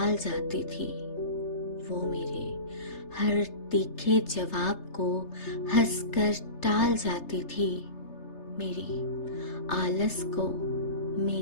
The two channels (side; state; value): right; late; 3.3 ms